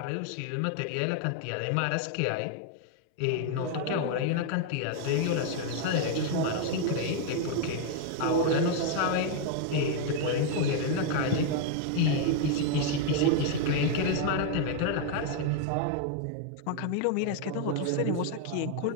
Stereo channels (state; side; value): different; both; correlation 0.00